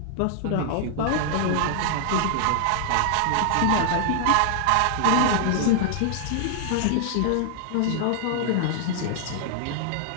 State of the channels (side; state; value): both; different; correlation 0.00